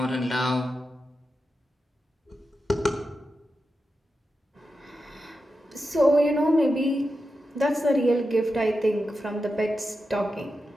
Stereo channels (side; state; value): both; normal; correlation 0.89